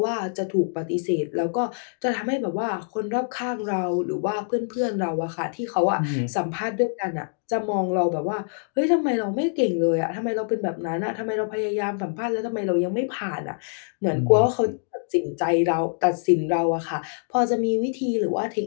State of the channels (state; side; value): silent; right; digital silence